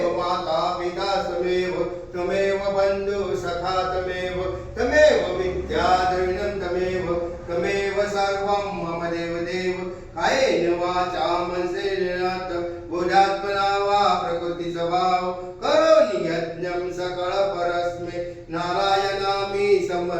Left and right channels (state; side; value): identical; both; correlation 1.00